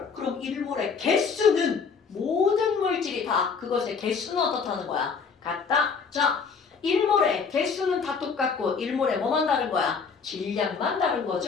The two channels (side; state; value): right; quieter; 5.5 dB